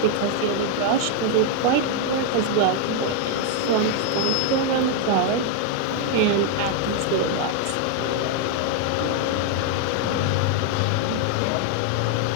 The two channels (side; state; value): both; different; correlation 0.00